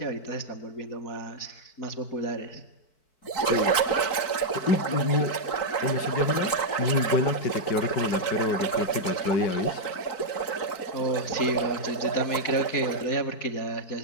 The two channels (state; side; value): late; right; 4.6 ms